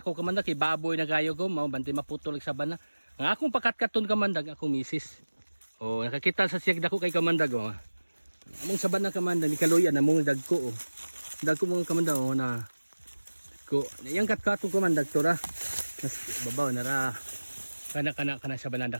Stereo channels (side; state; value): both; inverted; correlation -1.00